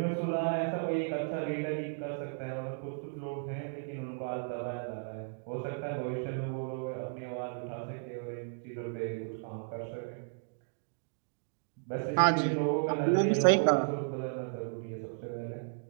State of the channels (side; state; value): left; silent; digital silence